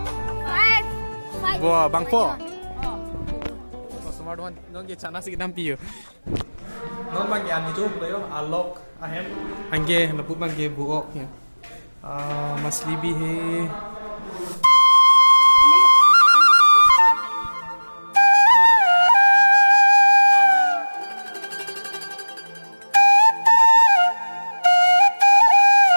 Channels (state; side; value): inverted; both; correlation -1.00